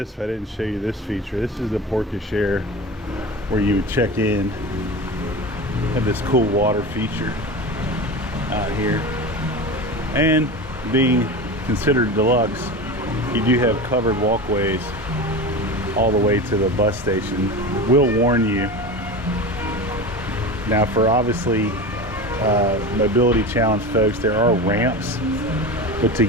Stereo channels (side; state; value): both; normal; correlation 0.29